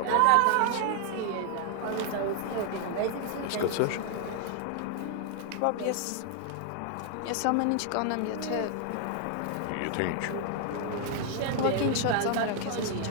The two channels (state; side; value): different; both; correlation 0.00